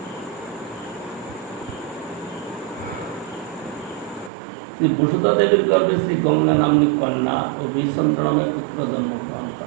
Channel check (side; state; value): left; drops out; at 4.3 s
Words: শ্রী বসুধা দেবীর গর্ভে শ্রী গঙ্গা নাম্নী কন্যা ও বিচন্দ্র নামে পুত্র জন্মগ্রহণ